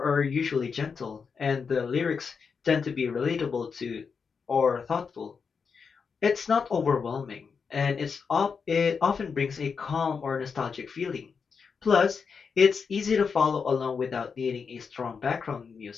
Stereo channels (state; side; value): quieter; right; 5.7 dB